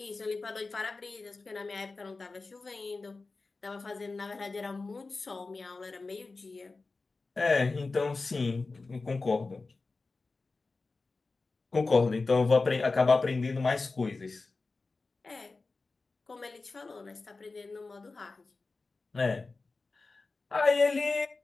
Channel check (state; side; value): quieter; right; 3.8 dB